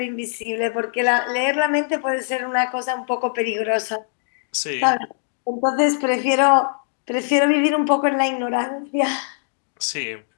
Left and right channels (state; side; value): silent; right; digital silence